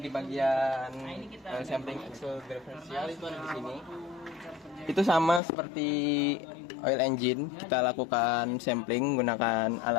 di bagian oil sampling axle differential itu ada di sini. Itu sama seperti oil engine, kita lakukan sampling menggunakan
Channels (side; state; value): right; drops out; at 5.4 s